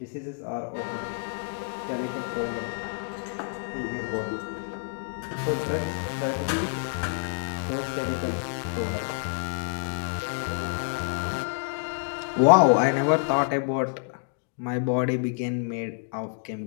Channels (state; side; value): silent; right; digital silence